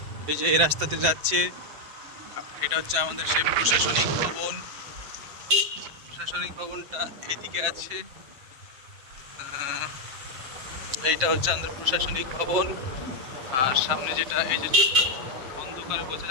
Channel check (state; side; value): late; left; 7.7 ms